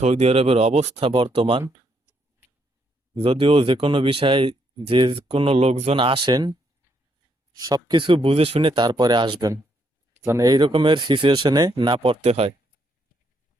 আরবের অবস্থা বর্তমান। যদিও যে কোনো বিষয়ে যে কোনো লোকজন আসেন সবকিছু বুঝে শুনে তারপরে আসবেন, যেন এই রকমের সিচুয়েশনে না পড়তে হয়।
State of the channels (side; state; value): both; normal; correlation 0.75